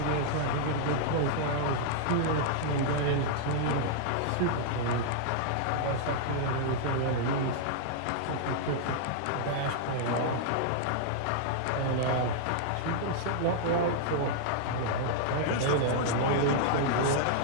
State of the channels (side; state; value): both; different; correlation -0.01